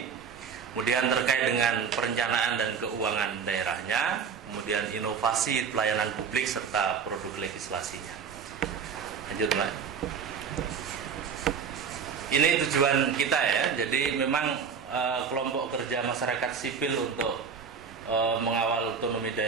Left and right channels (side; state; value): left; quieter; 6.3 dB